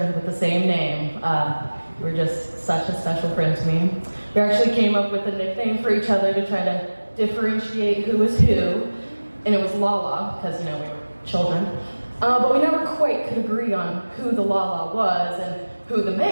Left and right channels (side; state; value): both; inverted; correlation -1.00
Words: with the same name, you were just such a special friend to me. We actually came up with a nickname for each other to try to differentiate who was who, and it was Lala, because, we were children. But we never quite could agree on who the Lala was and who the